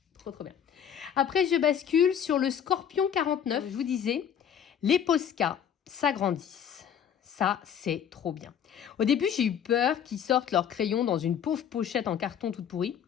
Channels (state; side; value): quieter; right; 8.6 dB